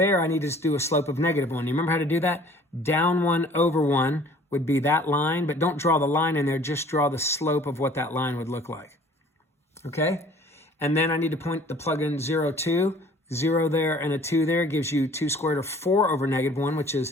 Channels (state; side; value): normal; both; correlation 0.52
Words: I need to do a slope of -1. You remember how to do that? Down 1 over 1 would be that line, but don't draw the line in there. Just draw the slope of what that line would look like. Okay? And then I need to plug in 0, 2. 0 there and a 2 there gives you 2 squared root of 4 over negative 1, which is